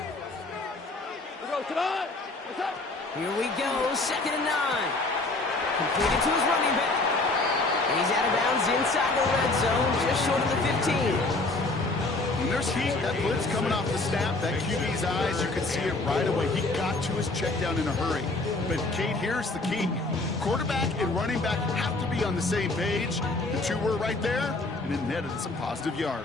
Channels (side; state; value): right; quieter; 3.1 dB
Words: Let's go tonight. What's up? Here we go, 2nd and 9. Completed to his running back. And he's out of bounds inside the red zone, just short of the 15. When there's heat, that blitz coming off the snap, that QB's eyes, you can see it right away. He got to his check down in a hurry. But, Kate, here's the key. Quarterback and running back have to be on the same page. The two were right there, and it netted some positive